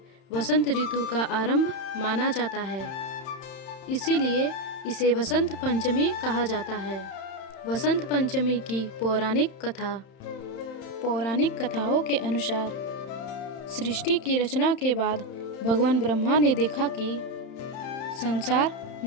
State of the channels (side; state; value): right; late; 31 ms